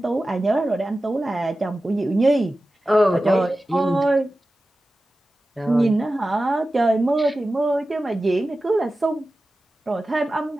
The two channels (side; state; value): both; normal; correlation 0.95